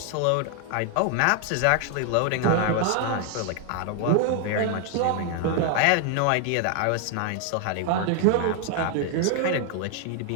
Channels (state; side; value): different; both; correlation 0.00